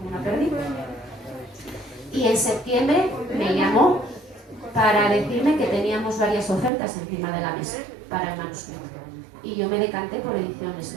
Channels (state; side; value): drops out; left; at 6.7 s